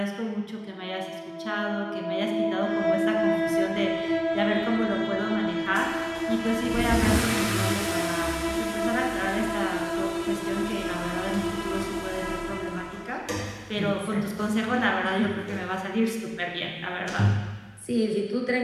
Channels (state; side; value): identical; both; correlation 1.00